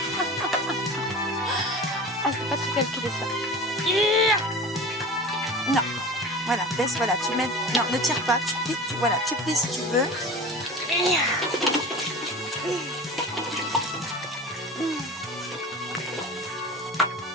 Ah, c'est pas très calculé, ça. Non. Voilà, baisse, voilà. Tu mets... Non, ne tire pas. Voilà, tu plies si tu veux.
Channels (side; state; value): both; normal; correlation 0.36